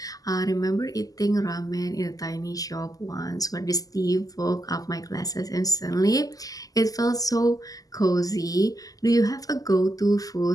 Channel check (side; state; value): right; late; 0.17 ms